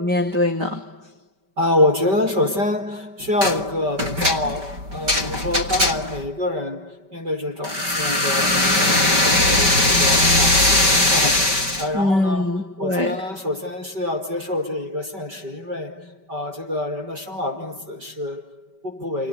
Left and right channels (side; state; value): left; late; 5.2 ms